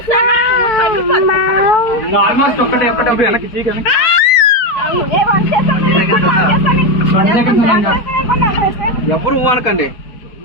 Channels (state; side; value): late; right; 4.6 ms